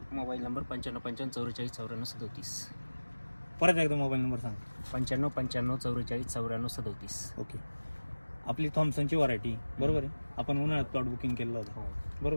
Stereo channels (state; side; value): inverted; both; correlation -1.00